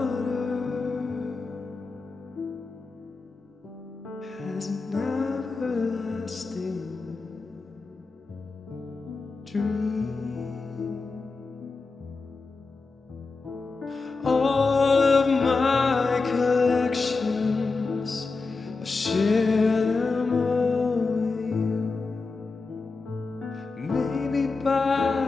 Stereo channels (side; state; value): right; quieter; 4.0 dB